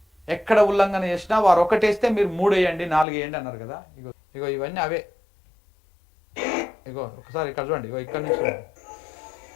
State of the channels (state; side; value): drops out; right; at 3.1 s